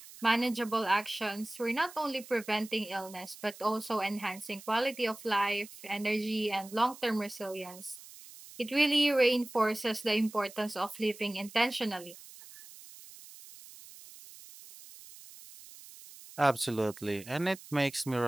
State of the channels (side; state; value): right; noise; hiss, 18 dB below the sound